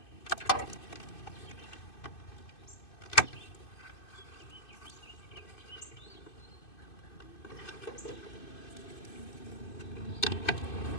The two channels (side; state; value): right; late; 2.6 ms